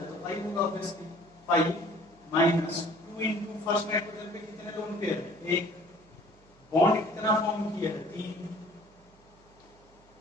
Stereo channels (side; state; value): right; noise; hum, 28 dB below the sound